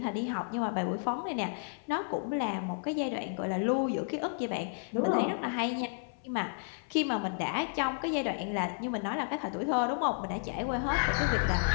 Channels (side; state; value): right; silent; 56 dB below the other